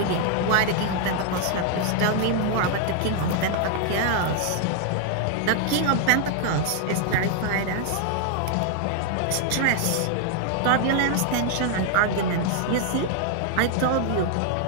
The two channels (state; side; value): different; both; correlation 0.00